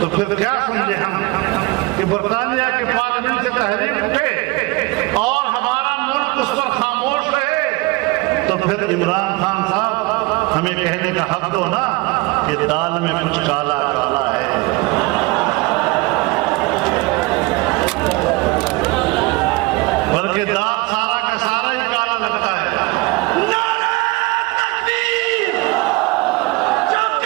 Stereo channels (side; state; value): left; quieter; 23.8 dB